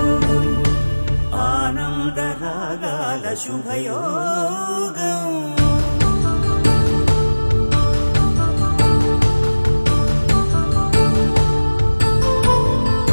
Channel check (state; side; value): inverted; both; correlation -1.00